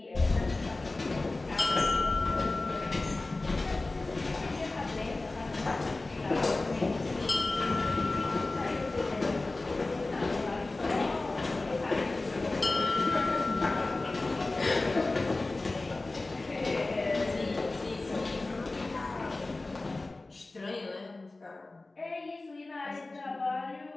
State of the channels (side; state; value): right; quieter; 3.2 dB